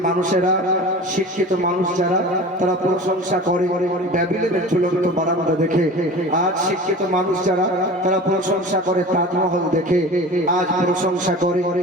মানুষেরা, শিক্ষিত মানুষ যারা, তারা প্রশংসা করে ব্যাবিলনের ঝুলন্ত বারান্দা দেখে। আজ শিক্ষিত মানুষ যারা, তারা প্রশংসা করে তাজমহল দেখে। আজ প্রশংসা করে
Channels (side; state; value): both; normal; correlation 0.36